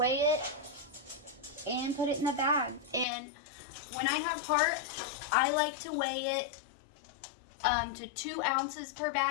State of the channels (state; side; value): drops out; right; at 3.1 s